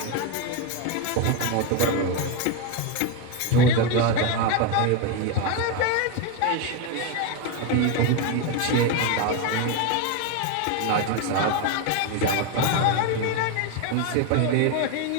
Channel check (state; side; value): different; both; correlation 0.03